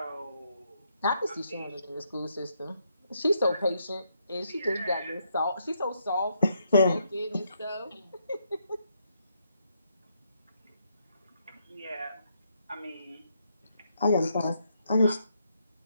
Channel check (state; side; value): inverted; both; correlation -0.76